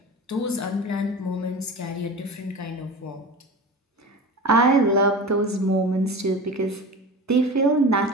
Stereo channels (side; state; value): both; normal; correlation 0.32